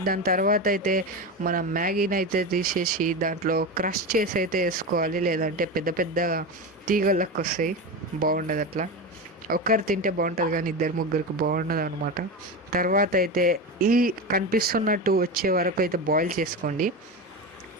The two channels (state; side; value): normal; both; correlation 0.21